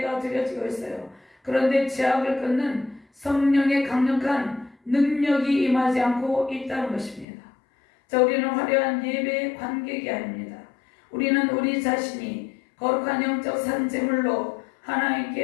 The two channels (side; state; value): right; drops out; at 7.2 s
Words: 드려지고 있어요. 그런데 죄악을 끊는 성령의 강력한 능력이 임하지 않고 있다는 것입니다. 자, 우리는 화려한 예배의 관객이 아닙니다. 우리는 우리 자신이 거룩한 영적 산제물로